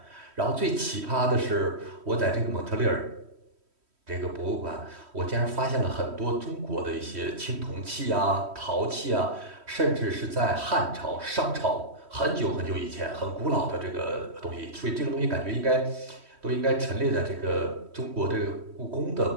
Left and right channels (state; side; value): late; left; 3.1 ms